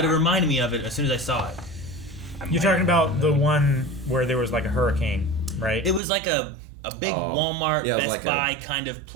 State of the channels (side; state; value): left; drops out; at 6.0 s